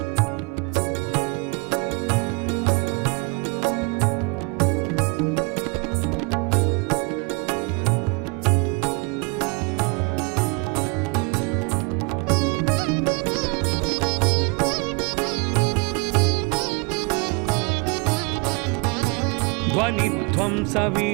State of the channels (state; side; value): quieter; left; 30.4 dB